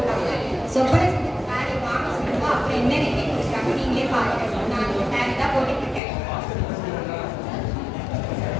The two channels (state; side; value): drops out; right; at 6.0 s